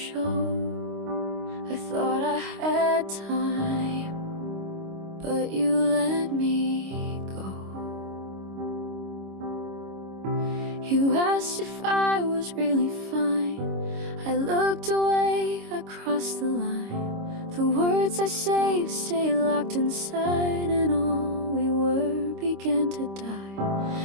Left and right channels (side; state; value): left; late; 26 ms